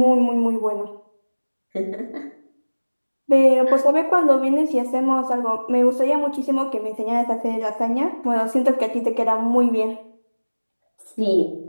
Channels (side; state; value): both; inverted; correlation -1.00